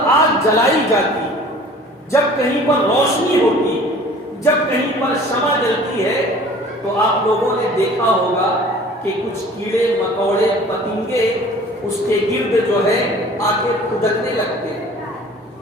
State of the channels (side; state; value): both; normal; correlation 0.47